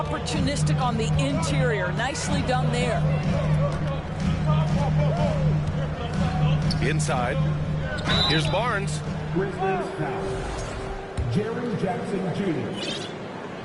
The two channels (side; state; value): both; identical; correlation 1.00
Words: on the interior. Nicely done there. Inside. Here's Barnes. Jerry Jackson Jr.